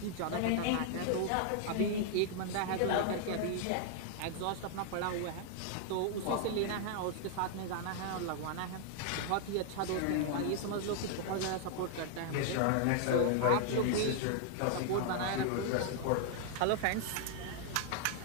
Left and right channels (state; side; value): different; both; correlation 0.00